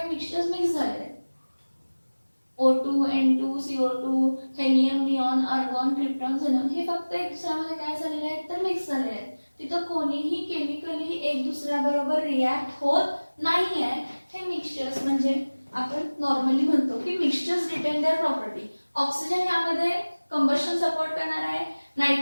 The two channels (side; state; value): both; inverted; correlation -1.00